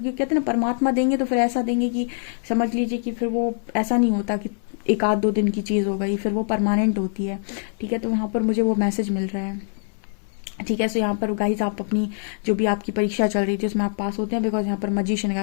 कहते हैं ना परमात्मा देंगे तो फिर ऐसा देंगे कि समझ लीजिए कि फिर वो ऐसा नहीं होता कि एक आध दो दिन की चीज़ हो गई, फिर वो परमानेंट होती है, ठीक है। तो यहाँ पर मुझे वो मैसेज मिल रहा है, ठीक है। सो यहाँ पर गाइज आप अपनी जो भी आपकी परीक्षा चल रही थी उसमें आप पास होते हैं, बिकॉज यहाँ पर मजिशियन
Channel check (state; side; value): silent; right; 60 dB below the other